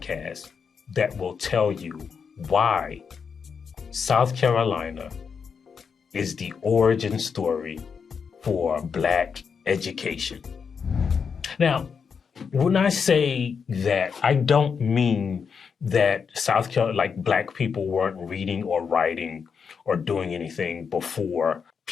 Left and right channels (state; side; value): quieter; right; 6.2 dB